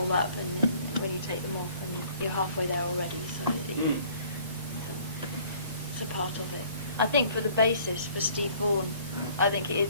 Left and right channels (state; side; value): inverted; both; correlation -0.56